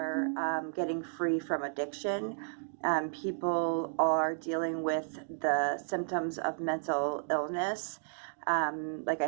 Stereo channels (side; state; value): left; silent; digital silence